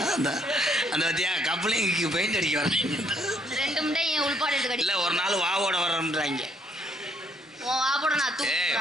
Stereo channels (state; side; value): normal; both; correlation 0.68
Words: அந்த பத்தியா கப்பலிங்க்கு பெயிண்ட் அடிக்க வர்றாங்க. இல்லை ஒரு நாள் வாவோட வர்றோம்ன்றாங்க.